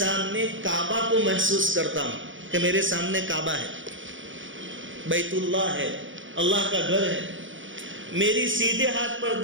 کعبہ کو محسوس کرتا ہوں کہ میرے سامنے کعبہ ہے، بیت اللہ ہے، اللہ کا گھر ہے، میری سیدھے ہاتھ پر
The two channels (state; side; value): late; left; 0.56 ms